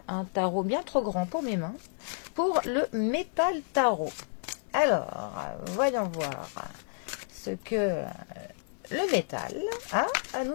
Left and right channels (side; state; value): right; silent; 57 dB below the other